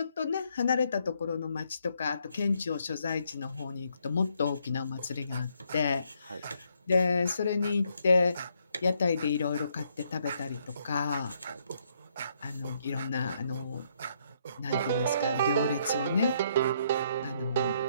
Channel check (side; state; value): both; inverted; correlation -0.72